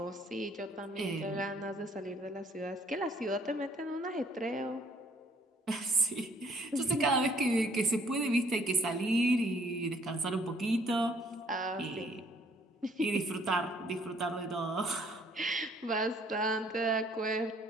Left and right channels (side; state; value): both; normal; correlation 0.61